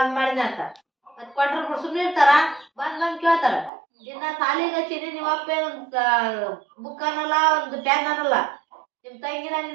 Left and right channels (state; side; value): drops out; left; at 3.7 s